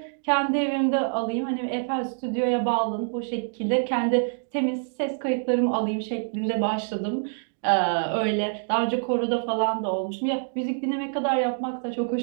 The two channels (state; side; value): silent; left; digital silence